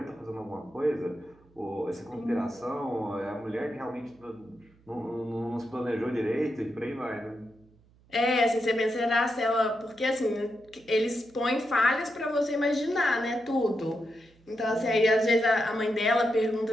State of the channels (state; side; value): noise; right; hum, 30 dB below the sound